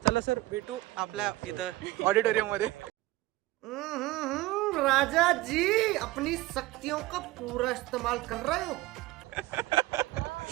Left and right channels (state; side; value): quieter; left; 18.2 dB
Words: चला सर भेटू आपल्या इथं ऑडिटोरियम मध्ये. राजा जी अपनी शक्तियों का पूरा इस्तेमाल कर रहे हो.